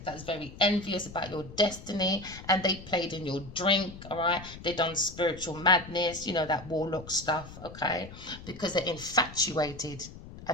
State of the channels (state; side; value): noise; left; rumble, 15 dB below the sound